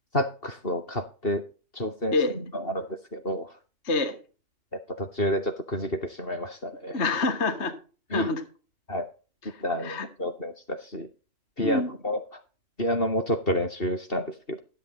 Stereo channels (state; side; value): late; right; 2.7 ms